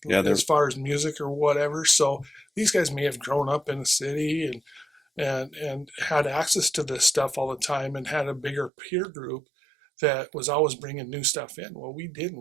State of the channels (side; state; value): left; drops out; at 8.7 s